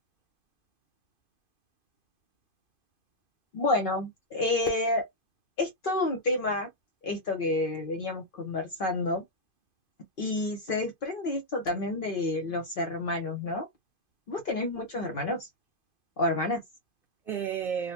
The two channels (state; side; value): late; right; 2.5 ms